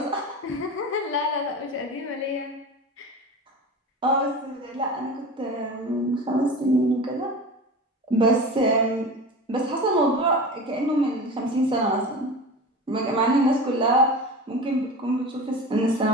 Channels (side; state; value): both; normal; correlation 0.32